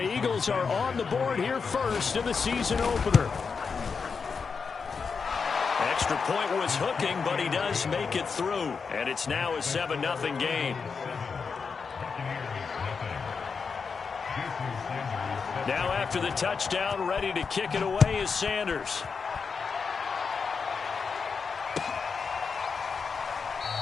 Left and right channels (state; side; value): quieter; right; 5.4 dB